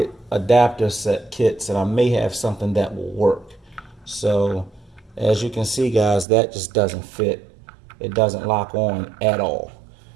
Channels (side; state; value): left; drops out; at 6.2 s